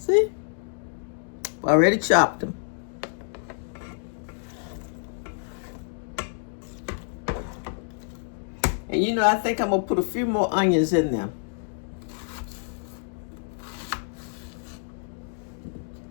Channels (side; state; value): right; silent; digital silence